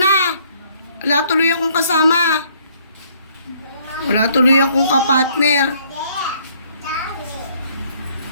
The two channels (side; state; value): both; inverted; correlation -0.64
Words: Wala tuloy akong kasama. Wala tuloy akong kapartner.